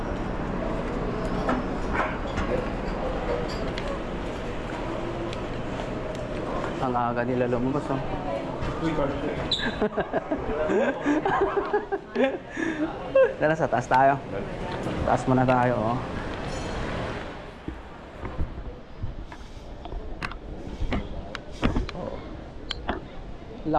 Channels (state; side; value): identical; both; correlation 1.00